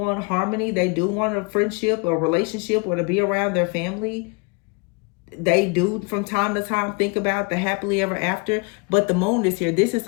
harmony. They do want a friendship or relationship or to be around their family. They do from time to time think about the happily ever after, but the Moon is here. This is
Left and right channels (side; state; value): right; quieter; 31.6 dB